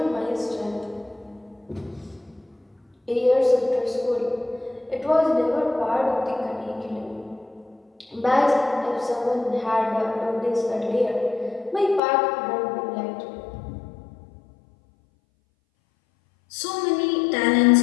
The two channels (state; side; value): drops out; right; at 12.0 s